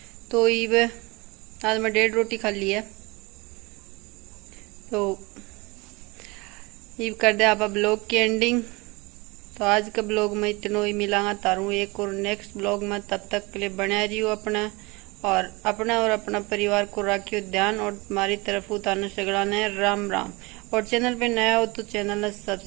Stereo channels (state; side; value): quieter; left; 25.3 dB